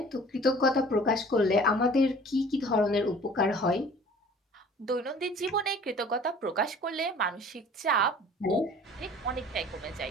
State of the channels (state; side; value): normal; both; correlation 0.48